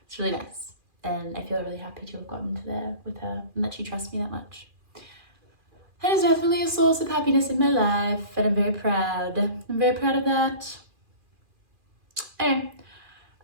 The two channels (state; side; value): late; left; 2.4 ms